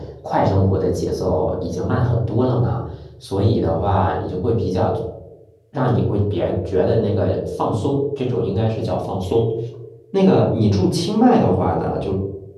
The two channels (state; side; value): identical; both; correlation 1.00